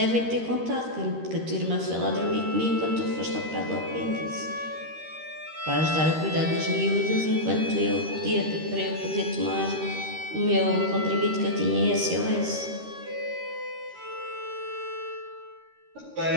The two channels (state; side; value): late; left; 13 ms